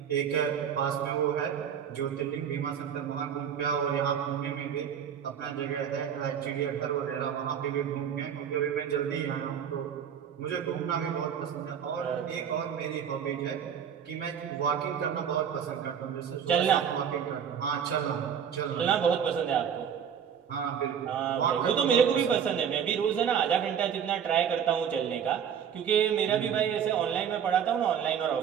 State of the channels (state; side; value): quieter; left; 8.1 dB